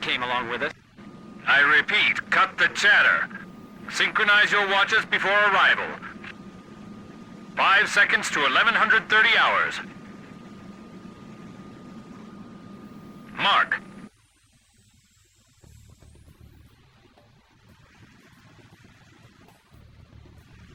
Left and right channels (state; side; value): identical; both; correlation 1.00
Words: along with us. I repeat, cut the chatter. Synchronize your watches before arrival. 5 seconds to 1130 hours. Mark.